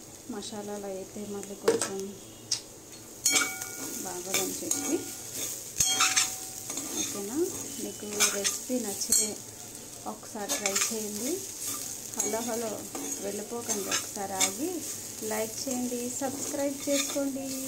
మసాలాలు అయితే మళ్ళీ కొంచెం బాగోదని చెప్పి. ఓకేనా, మీకు రెసిపీ నచ్చితే ఒకసారి ట్రై చేయండి. హలో వెళ్ళిపోకండి, ఒకసారి ఆగి లైక్ చేయండి, సబ్స్క్రైబ్ చేసుకోండి.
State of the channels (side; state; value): left; noise; rumble, 24 dB below the sound